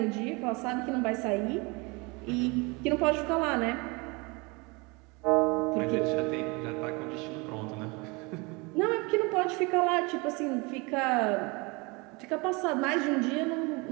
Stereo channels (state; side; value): quieter; left; 27.5 dB